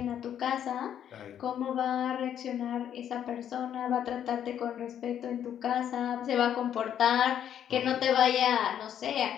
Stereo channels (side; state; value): right; quieter; 9.7 dB